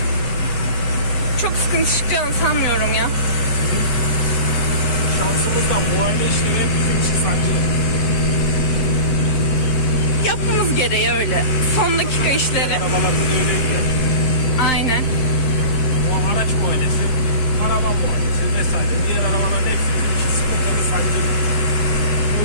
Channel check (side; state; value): right; late; 7.7 ms